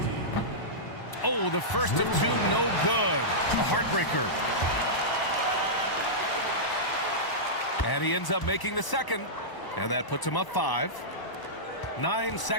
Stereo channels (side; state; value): right; late; 1.0 ms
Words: Oh, the first of 2, no good. A heartbreaker. And he ends up making the second. And that puts him up 5. 9